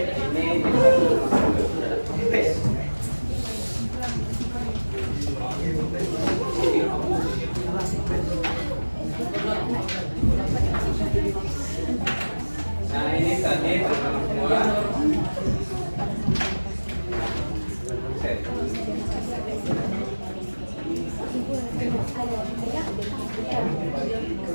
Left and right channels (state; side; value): inverted; both; correlation -1.00